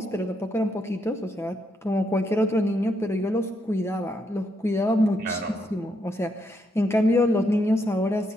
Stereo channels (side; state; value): both; normal; correlation 0.78